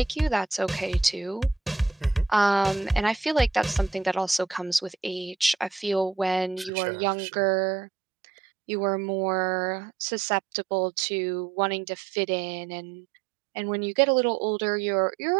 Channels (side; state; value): left; drops out; at 6.7 s